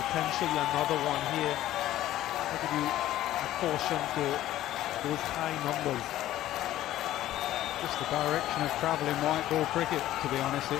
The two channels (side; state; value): right; quieter; 13.9 dB